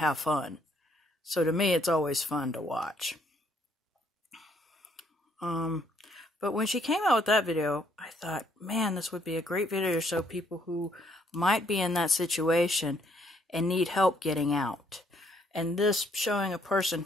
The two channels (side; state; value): both; normal; correlation 0.68